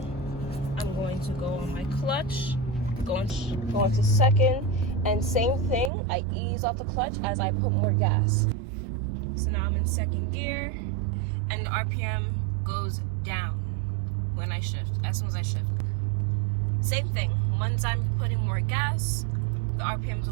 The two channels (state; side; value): drops out; left; at 5.9 s